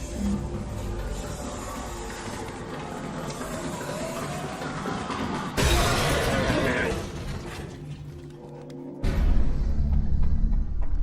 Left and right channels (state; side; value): identical; both; correlation 1.00